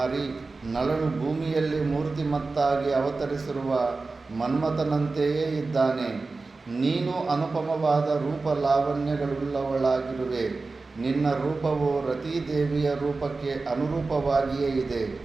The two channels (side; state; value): left; quieter; 3.8 dB